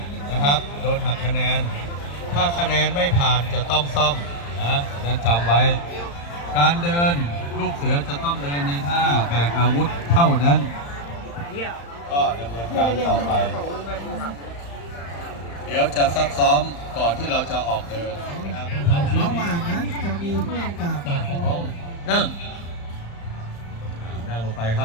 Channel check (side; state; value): right; late; 35 ms